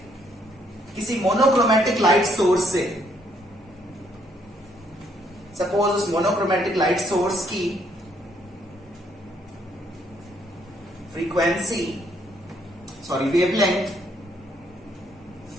किसी मोनोक्रोमेटिक लाइट सोर्स से, सपोज उस मोनोक्रोमेटिक लाइट सोर्स की वेवलेंथ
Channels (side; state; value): both; normal; correlation 0.69